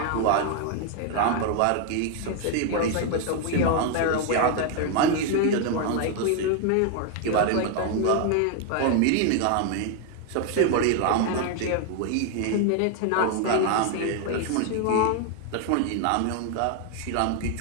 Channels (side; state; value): both; different; correlation 0.00